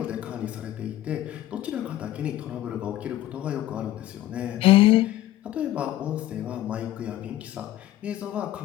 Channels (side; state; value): right; quieter; 14.2 dB